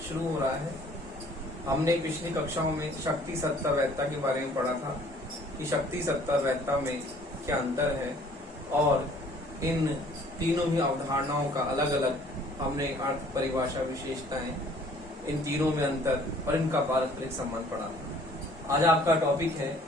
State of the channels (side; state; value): both; normal; correlation 0.56